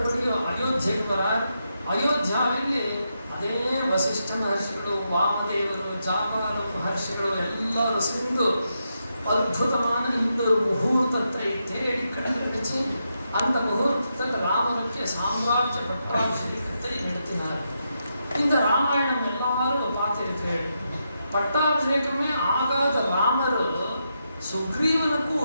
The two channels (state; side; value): inverted; both; correlation -0.84